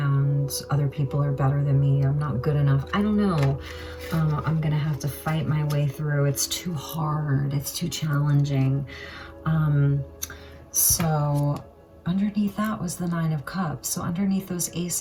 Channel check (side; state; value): both; identical; correlation 1.00